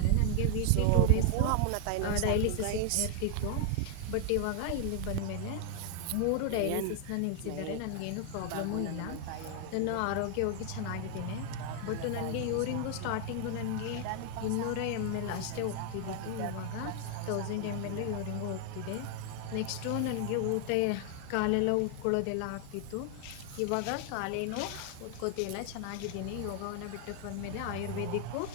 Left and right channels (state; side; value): different; both; correlation 0.00